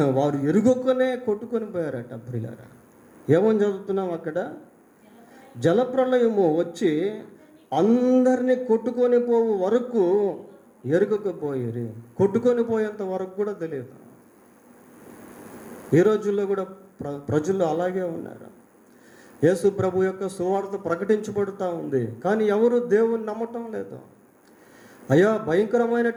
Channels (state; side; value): identical; both; correlation 1.00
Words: వారు ఎరుగొక్కనే కొట్టుకొని పోయారట. ప్రియులారా, ఏమని చదువుతున్నాం అక్కడ? జలప్రళయము వచ్చి అందరినీ కొట్టుకొని పోవు వరకు ఎరుగకపోయేది. కొట్టుకొని పోయేంత వరకు కూడా తెలియదు. ఈ రోజుల్లో కూడా ప్రజలు అలాగే ఉన్నారు. యేసు ప్రభు యొక్క సువార్త ప్రకటించబడుతూ ఉంది, కానీ ఎవరు దేవుని నమ్మటం లేదు. అయ్యా,